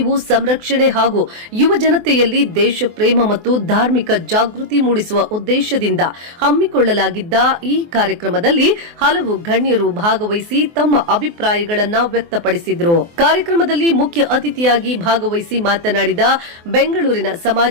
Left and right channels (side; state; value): left; late; 24 ms